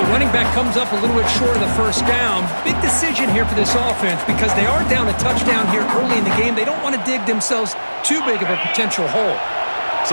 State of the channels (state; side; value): inverted; both; correlation -1.00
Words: running back comes up a little bit short of the first down. Big decision here for this offense because they are down a touchdown here early in the game. They don't want to dig themselves too big of a potential hole.